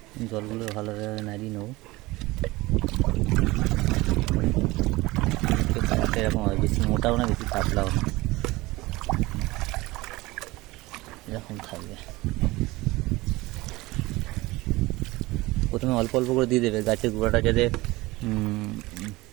জলগুলো ভালোভাবে নাড়িয়ে নেবো। কালারটা এরকম হয়, বেশি মোটাও না বেশি পাতলাও না, এরকম থাকবে। প্রথমে অল্প অল্প করে দিয়ে দেবে, গাছের গোড়াটা যাতে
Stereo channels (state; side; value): quieter; left; 20.6 dB